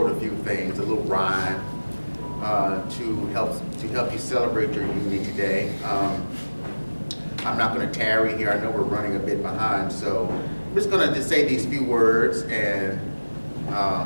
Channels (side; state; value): both; inverted; correlation -1.00